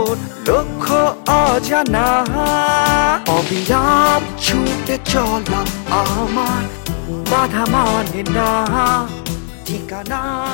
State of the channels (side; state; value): right; silent; 65 dB below the other